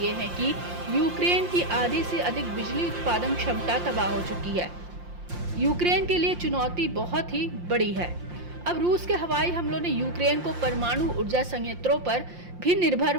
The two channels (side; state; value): left; late; 5.7 ms